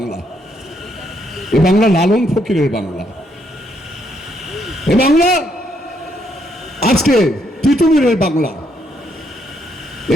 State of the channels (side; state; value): both; normal; correlation 0.74